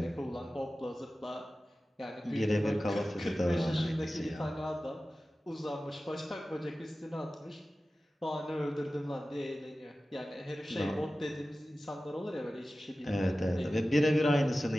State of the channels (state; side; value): normal; both; correlation 0.95